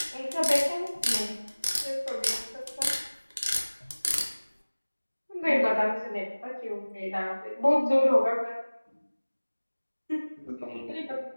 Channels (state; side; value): inverted; both; correlation -1.00